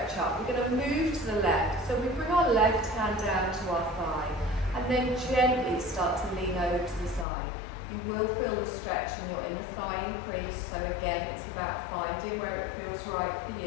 up. We're going to move to the left. So we bring our left hand down to our thigh. And then gently start to lean over to the side. You will feel the stretch in your inner thigh increase, so again it's about finding where it feels right for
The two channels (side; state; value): right; drops out; at 7.2 s